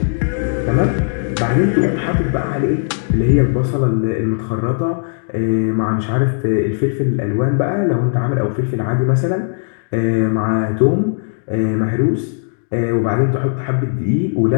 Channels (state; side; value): silent; right; digital silence